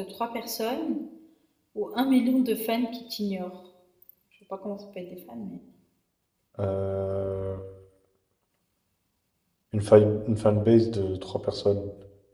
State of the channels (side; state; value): both; identical; correlation 1.00